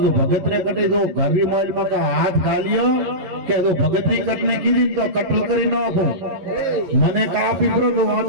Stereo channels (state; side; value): late; left; 11 ms